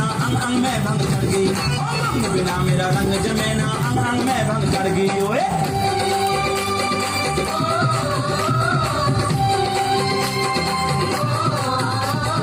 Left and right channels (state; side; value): identical; both; correlation 1.00